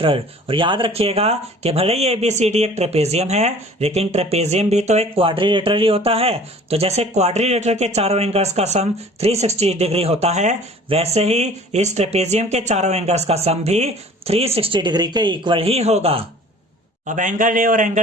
और याद रखिएगा कि भले ही ABCD एक ट्रेपेजियम है, लेकिन ट्रेपेजियम भी तो एक क्वाड्रिलेटरल ही होता है। तो जैसे क्वाड्रिलेटरल के चारों एंगल्स का सम 360 डिग्री होता है, वैसे ही इस ट्रेपेजियम के चारों एंगल्स का सम भी 360 डिग्री के इक्वल ही होगा। अब एंगल A और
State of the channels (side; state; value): both; normal; correlation 0.48